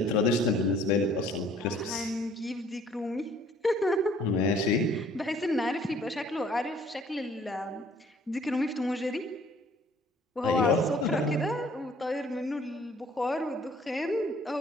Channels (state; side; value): normal; both; correlation 0.57